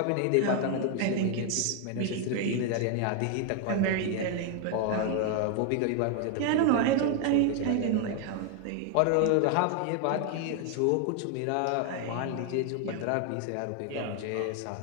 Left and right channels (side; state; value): both; different; correlation 0.01